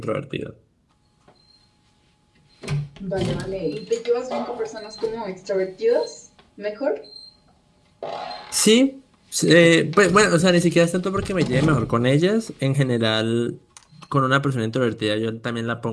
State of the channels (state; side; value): identical; both; correlation 1.00